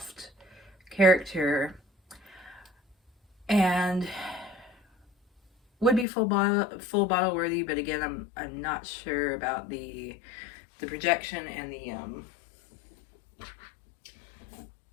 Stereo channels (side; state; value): right; drops out; at 6.1 s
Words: character. And would be full bottle worthy, but again, I'm not sure about the projection and the